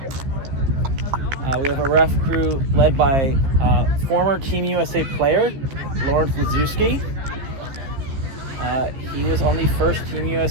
We have a ref crew led by former Team USA player, Lawrence Lazewski. He was on the first Team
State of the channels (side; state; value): left; late; 14 ms